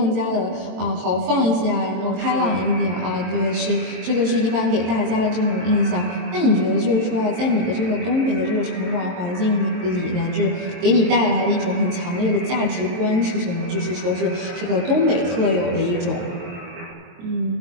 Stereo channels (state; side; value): late; left; 23 ms